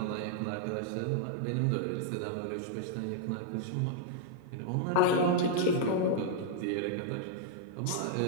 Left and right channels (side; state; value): both; different; correlation -0.01